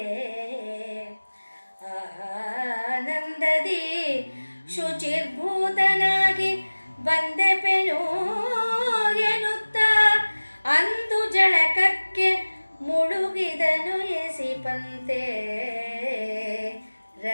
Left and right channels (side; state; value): both; inverted; correlation -1.00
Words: ಆನಂದದಿ ಶುಚಿರ್ಭೂತನಾಗಿ ಬಂದೆಪೆನು ಎನ್ನುತ್ತ ಅಂದು ಜಳಕಕ್ಕೆ ಮುಳುಗಿದನು ಎಸಿಪಂತೆ